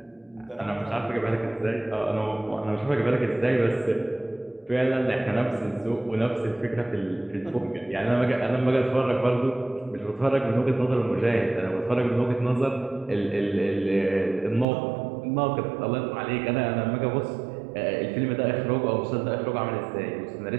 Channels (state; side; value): drops out; left; at 14.7 s